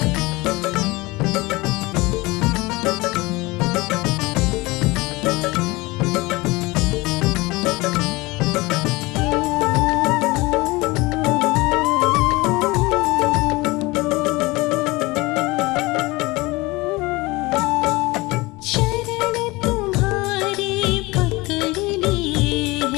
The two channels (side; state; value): right; quieter; 22.5 dB